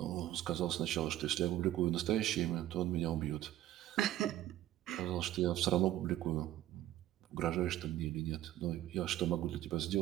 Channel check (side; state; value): left; quieter; 13.6 dB